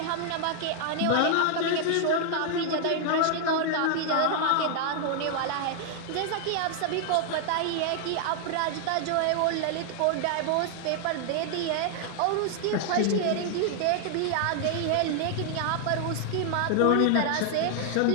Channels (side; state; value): both; different; correlation 0.00